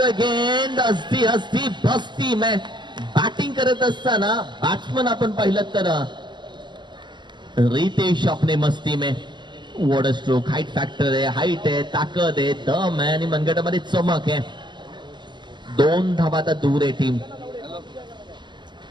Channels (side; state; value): left; late; 0.22 ms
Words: गेंद. हस्ती हस्ती बस्ती में बॅटिंग करत असताना बॅट्समन आपण पाहिलं तर रितेश अपने मस्ती में. वॉटर स्ट्रोक, हाईट फॅक्टर आहे, हाईट आहे, ताकद आहे, दम आहे आणि मनगटामध्ये चमक आहे. 2 धावा आता दूर आहे टीम.